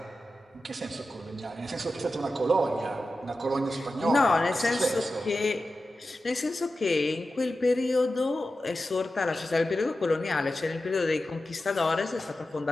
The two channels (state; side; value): normal; both; correlation 0.92